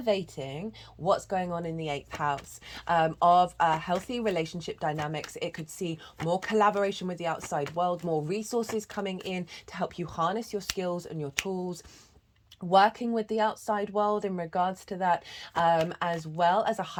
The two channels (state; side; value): identical; both; correlation 1.00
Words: what's going on in the 8th house of healthy relationship dynamics. It could see more collaboration with the outside world, more resources coming in to help you harness your skills and your tools, working with the outside world in regards to that, as well as a